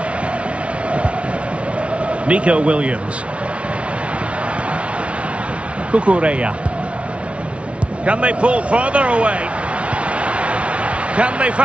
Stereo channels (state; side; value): late; left; 0.061 ms